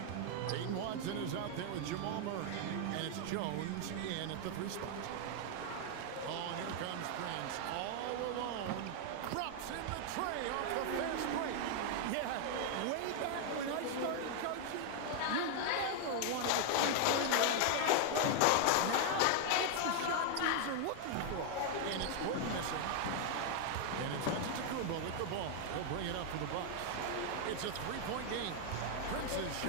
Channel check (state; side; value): different; both; correlation 0.00